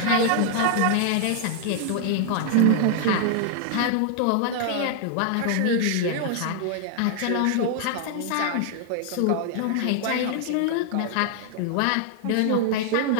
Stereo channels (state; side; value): different; both; correlation 0.00